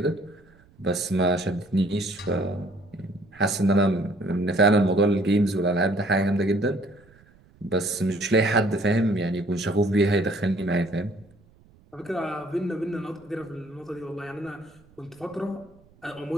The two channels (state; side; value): noise; right; rumble, 29 dB below the sound